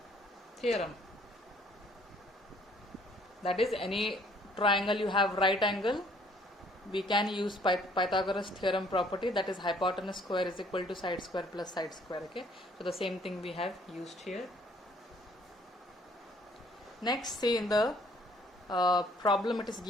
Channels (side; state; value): both; normal; correlation 0.61